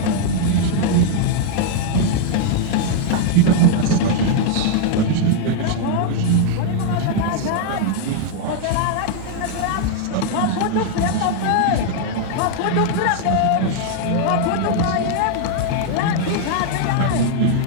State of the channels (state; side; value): different; both; correlation 0.00